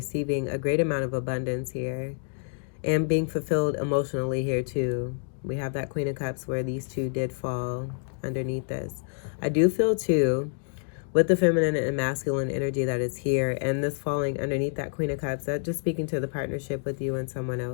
a great amount of abundance here, and being fulfilled emotionally here too. We have that Queen of Cups where these 2 did fall underneath this. I do feel too, with the feminine and masculine energy that is here and this falling underneath that Queen of Cups, that just speaking to the partnership with you and someone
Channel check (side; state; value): right; silent; digital silence